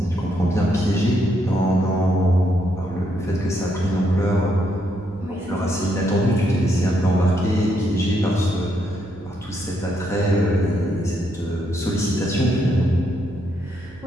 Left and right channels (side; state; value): right; noise; hum, 21 dB below the sound